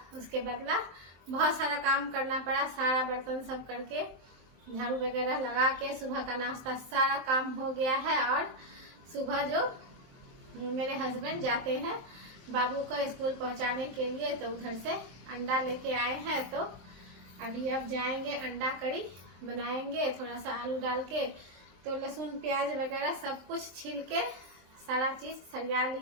उसके बदला बहुत सारा काम करना पड़ा। सारा बर्तन सब करके झाड़ू वगैरह लगा के सुबह का नाश्ता सारा काम हो गया है। और सुबह जो मेरे हस्बैंड जाते हैं बाबू को स्कूल पहुंचाने के लिए, तो उधर से अंडा लेके आए हैं। तो अभी अब जाएंगे, अंडा करी बनाएंगे थोड़ा सा आलू डाल के। तो लहसुन प्याज वगैरह सब कुछ छील के सारा चीज सरिया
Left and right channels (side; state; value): left; late; 23 ms